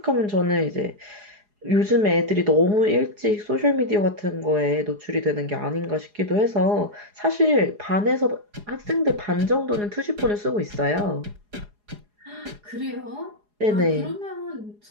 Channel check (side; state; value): left; late; 4.8 ms